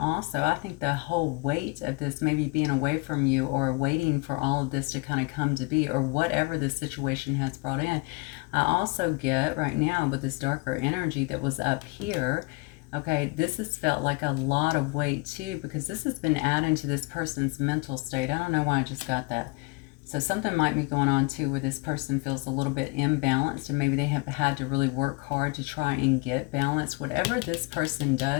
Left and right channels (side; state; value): right; quieter; 28.5 dB